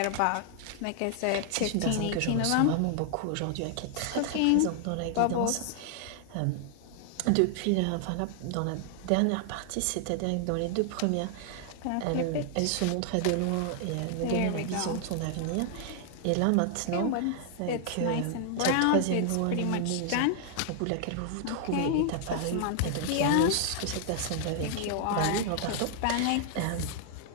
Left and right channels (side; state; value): both; different; correlation 0.00